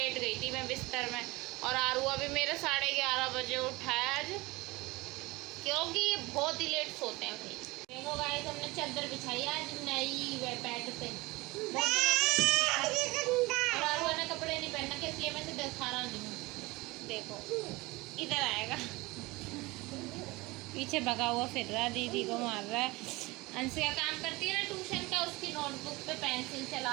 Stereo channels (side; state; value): left; quieter; 22.3 dB